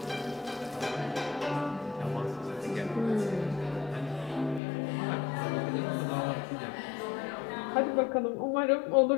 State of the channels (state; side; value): drops out; right; at 4.6 s